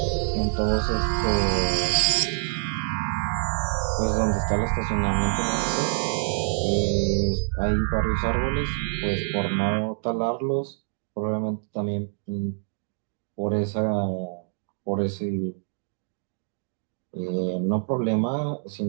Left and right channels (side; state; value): left; silent; digital silence